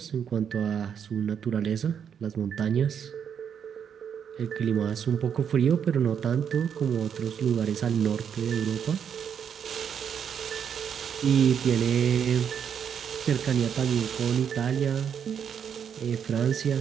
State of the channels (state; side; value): quieter; left; 7.9 dB